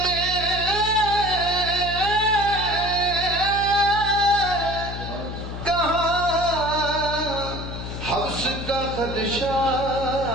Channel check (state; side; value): noise; left; hum, 8 dB below the sound